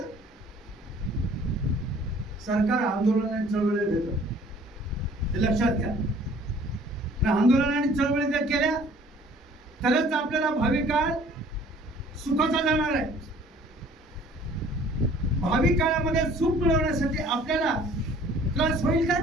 सरकार आंदोलन आणि चळवळी भेटत, ते लक्षात घ्या. आंदोलन आणि चळवळी जर केल्या तरच आपल्याला भावी काळ सुखाचा जाणार आहे. भावी काळामध्ये सुख मिळवण्यासाठी आपल्याला त्रास होईल का?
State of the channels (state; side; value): normal; both; correlation 0.54